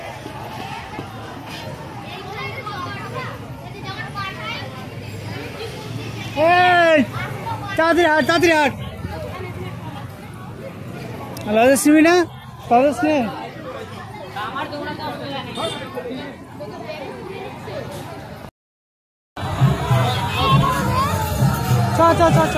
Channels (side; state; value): both; identical; correlation 1.00